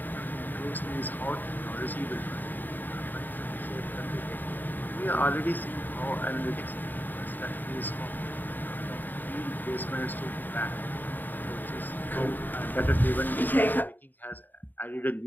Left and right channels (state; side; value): late; right; 0.089 ms